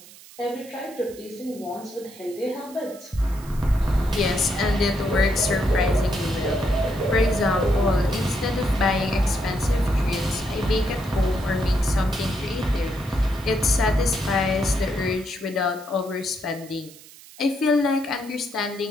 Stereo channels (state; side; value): noise; right; hiss, 20 dB below the sound